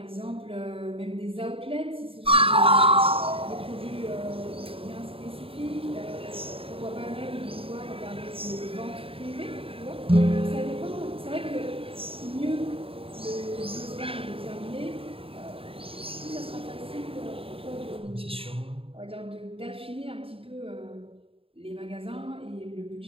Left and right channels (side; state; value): left; late; 0.27 ms